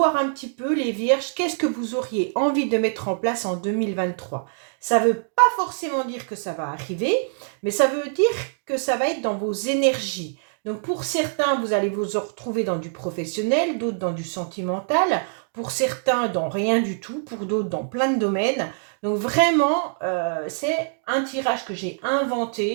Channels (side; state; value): left; silent; digital silence